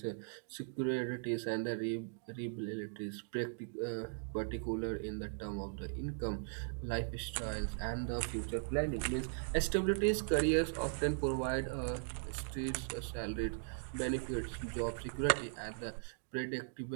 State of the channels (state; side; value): silent; left; digital silence